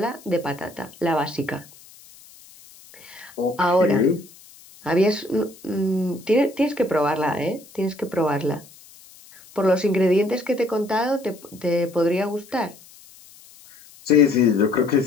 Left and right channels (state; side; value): noise; left; hiss, 23 dB below the sound